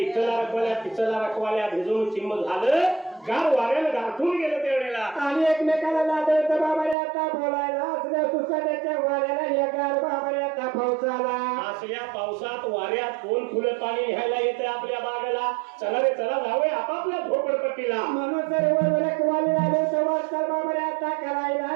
रखवाल्या पिचला रखवाल्या भिजून चिंब झालं, गार वाऱ्यानं गाठून गेलं त्यावेळेला. आणि एकमेकाला लादवतं बाबारे आता बोलायला असल्या सुसाट्याच्या वाऱ्याला या गार बाबारे आता पावसाला. असल्या पावसात वाऱ्यात कोण फुलं पाणी न्यायला येते आपल्या बागेला. चला रे चला जाऊया आपापल्या झोपडपट्टीला. म्हणून सर्व रखवाले लादवतं वाटतं बाबारे आता करायला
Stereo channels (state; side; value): drops out; left; at 7.0 s